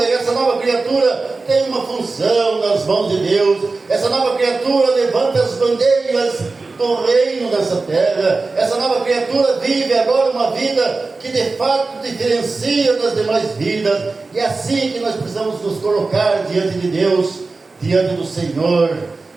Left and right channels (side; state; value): left; quieter; 3.8 dB